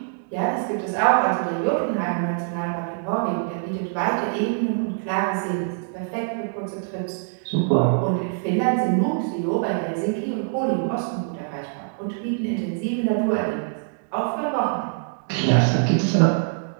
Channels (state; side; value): silent; left; digital silence